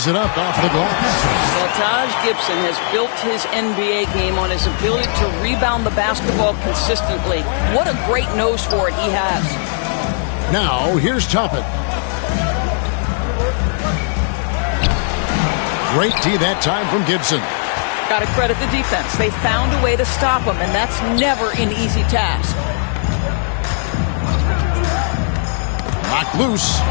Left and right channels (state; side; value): silent; right; 68 dB below the other